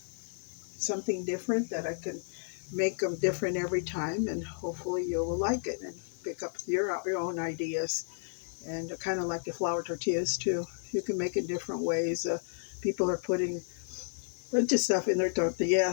something different that I can make them different every time, and hopefully you will like it and pick up your own ideas and kind of like the flour tortillas too. You can make it different ways. People are putting a bunch of stuff in their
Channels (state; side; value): silent; right; 56 dB below the other